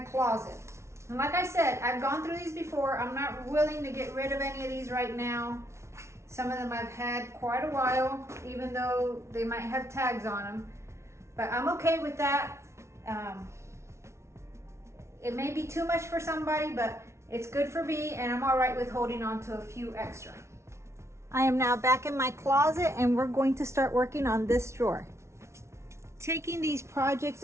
And like I said, I've gone through these before. I'm not willing to get rid of any of these right now. Some of them I've had quite a while, even though they might have tags on them. But I'm okay with that. It may be too much for somebody, but it's good for me, and I'm all right with holding on to a few extra. I am now back in my closet, and we're going to start working on this drawer. Taking these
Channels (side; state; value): left; late; 0.13 ms